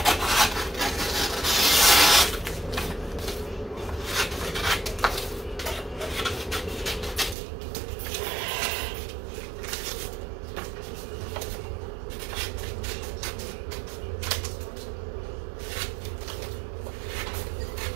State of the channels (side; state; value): left; drops out; at 7.4 s